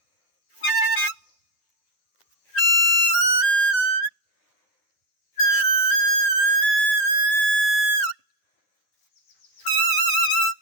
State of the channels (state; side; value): late; right; 9.9 ms